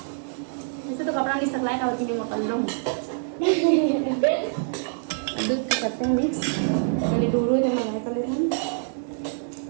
ऐसे तो कपड़ा नहीं सकलाए का होती है मैं कर लूँ दूध को करते हैं मिक्स पहले दूर हो जब मैं कर लेते हैं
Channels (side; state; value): left; silent; digital silence